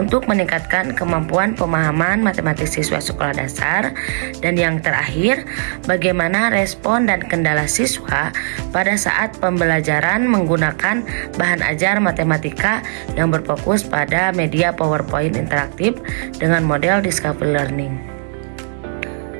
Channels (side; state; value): left; silent; digital silence